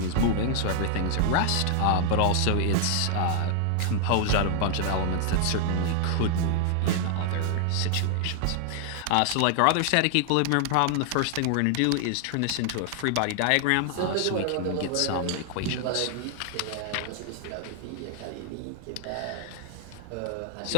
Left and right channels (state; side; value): different; both; correlation 0.00